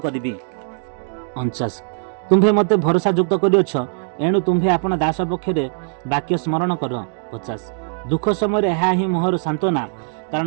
କରିବି। 49 ତୁମ୍ଭେ ମୋତେ ଭରସା ଯୁକ୍ତ କରିଅଛ, ଏଣୁ ତୁମ୍ଭେ ଆପଣ ଦାସ ପକ୍ଷରେ ବାକ୍ୟ ସ୍ମରଣ କର। 50 ଦୁଃଖ ସମୟରେ ଏହା ହିଁ ମୋହର ସାନ୍ତ୍ୱନା,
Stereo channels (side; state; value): left; silent; digital silence